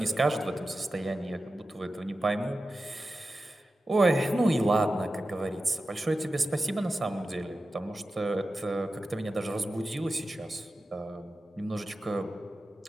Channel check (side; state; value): both; normal; correlation 0.93